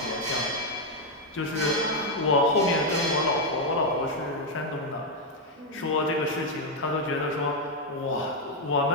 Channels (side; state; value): both; normal; correlation 0.02